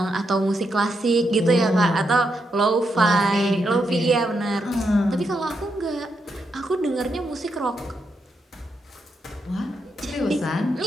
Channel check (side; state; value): both; normal; correlation 0.81